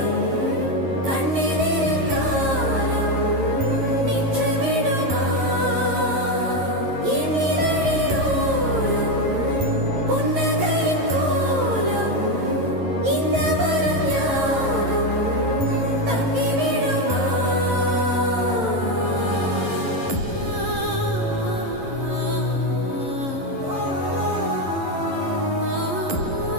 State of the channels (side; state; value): left; late; 11 ms